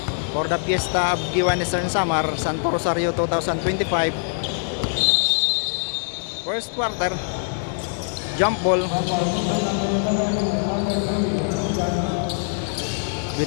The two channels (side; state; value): right; silent; 63 dB below the other